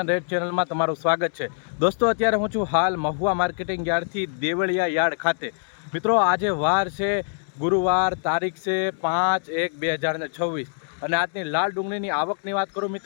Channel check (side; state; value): right; silent; digital silence